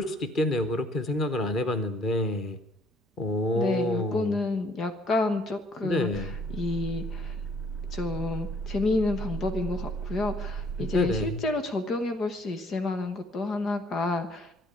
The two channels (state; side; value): normal; both; correlation 0.62